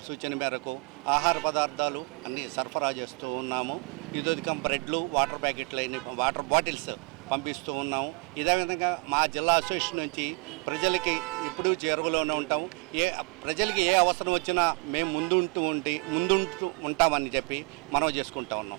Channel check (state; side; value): quieter; left; 31.0 dB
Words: సూచన మేరకు ఆహార పదార్థాలు అన్నీ సరఫరా చేస్తూ ఉన్నాము. ఇదొక బ్రెడ్లు, వాటర్ ప్యాకెట్లు, వాటర్ బాటిల్స్ పంపిస్తూ ఉన్నాము. ఇదే విధంగా మా జిల్లా అసోసియేషన్ నుంచి ప్రజలకి ఎప్పుడూ చేరువలోనే ఉంటాం. ప్రజలకి ఏ అవసరం వచ్చినా మేము ముందుంటూ ఉంటామని చెప్పి మనవి చేసుకుంటా